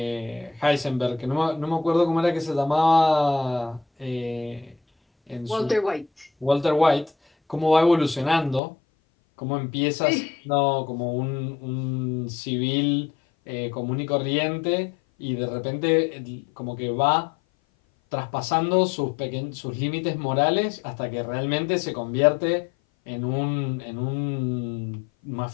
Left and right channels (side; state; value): right; drops out; at 8.6 s